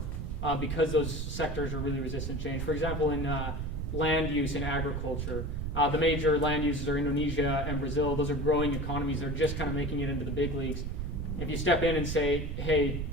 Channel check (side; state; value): right; noise; rumble, 3 dB below the sound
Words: because those sectors are really resistant to change. For example, in land use in agriculture, the major land uses are Indonesia and Brazil. Those are growing economies. They're just kind of making it into the big leagues. If you step in and say, hey,